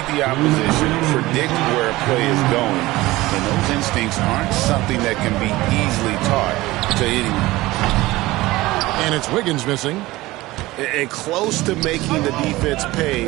the opposition, predict where a play is going, and those instincts aren't something that can be easily taught to anyone. And it's Wiggins missing. And close to making the defense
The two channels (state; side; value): quieter; left; 18.9 dB